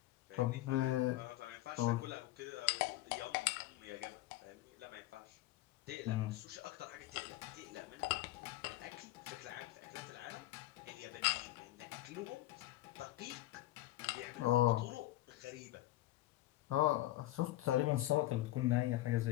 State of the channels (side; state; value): right; quieter; 16.2 dB